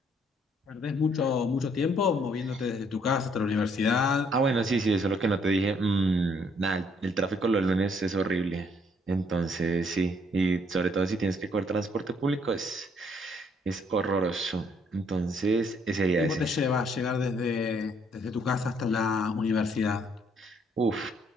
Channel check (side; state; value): both; normal; correlation 0.67